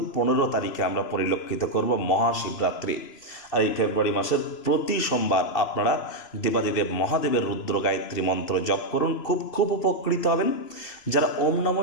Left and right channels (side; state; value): right; late; 2.7 ms